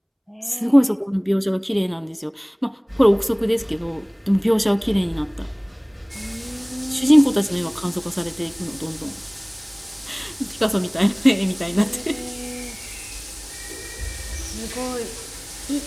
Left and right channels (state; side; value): identical; both; correlation 1.00